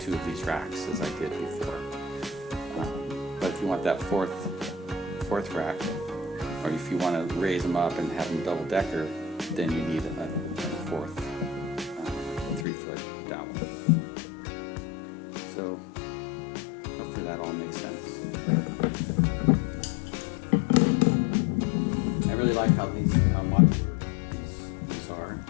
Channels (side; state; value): right; drops out; at 12.7 s